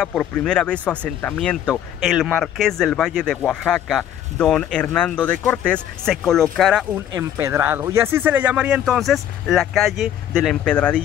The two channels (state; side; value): quieter; right; 10.6 dB